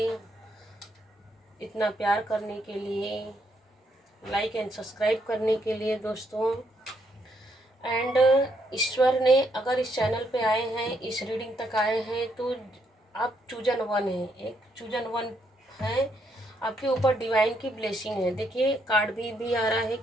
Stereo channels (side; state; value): both; normal; correlation 0.75